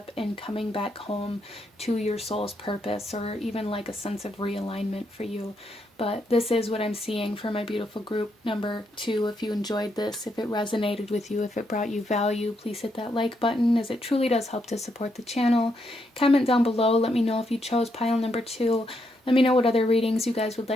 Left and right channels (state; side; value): normal; both; correlation 0.78